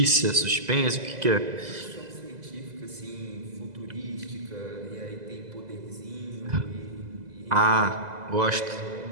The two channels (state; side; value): late; left; 2.0 ms